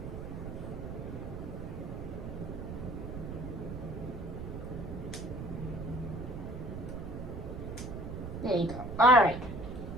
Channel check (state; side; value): noise; right; rumble, 7 dB below the sound